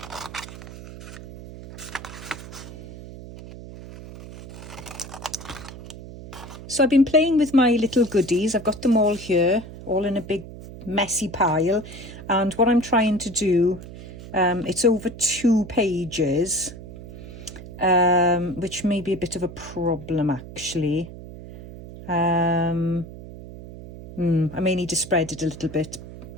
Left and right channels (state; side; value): noise; right; hum, 14 dB below the sound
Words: So I've been playing with my little goodies. I've got them all here, all in a big messy pile. And what I'm trying to do, it's over 2 pages, which may be a bit of a problem actually. I may need to spread it a little bit.